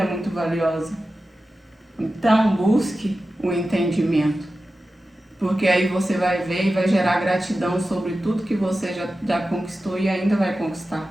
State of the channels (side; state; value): both; normal; correlation 0.93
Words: muito valiosa. Então, busque o entendimento, porque aí você vai ver e vai gerar gratidão sobre tudo que você já conquistou e ainda vai conquistar.